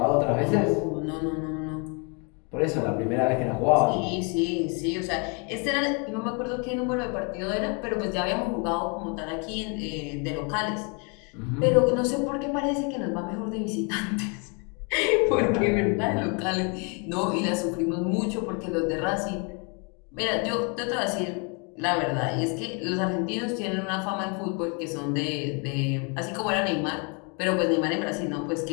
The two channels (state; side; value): quieter; right; 35.0 dB